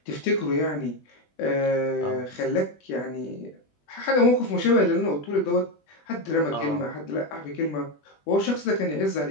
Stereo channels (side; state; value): right; late; 20 ms